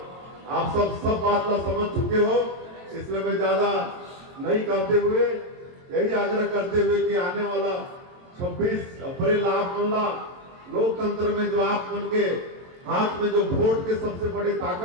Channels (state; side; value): late; left; 22 ms